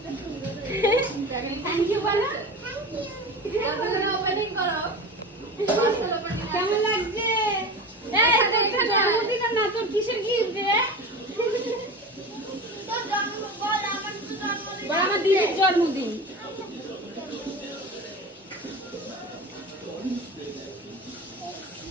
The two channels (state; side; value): normal; both; correlation 0.30